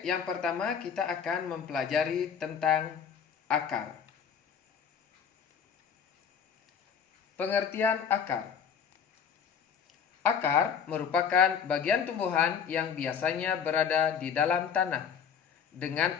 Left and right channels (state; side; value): quieter; right; 7.3 dB